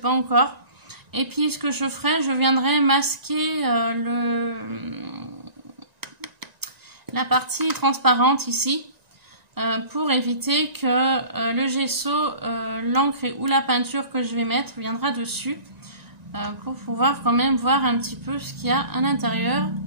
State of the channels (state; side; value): late; left; 1.9 ms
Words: encore. Et puis ce que je ferai, je viendrai masquer la partie transparente ici pour éviter que le gesso, l'encre ou la peinture que je vais mettre viendra dessus pour pouvoir quand même voir un petit peu ce qu'il y a à l'intérieur